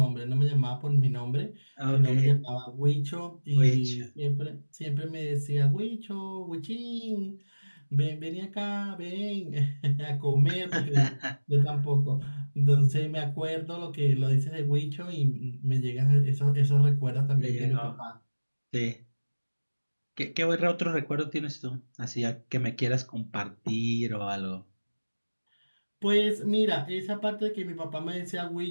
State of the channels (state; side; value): inverted; both; correlation -1.00